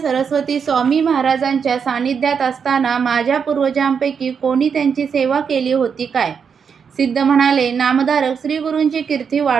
स्वामी महाराजांच्या सानिध्यात असताना माझ्या पूर्वजांपैकी कोणी त्यांची सेवा केली होती काय? सिद्ध म्हणाले, नामधारक, श्री गुरूंची कीर्ती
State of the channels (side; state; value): left; quieter; 6.6 dB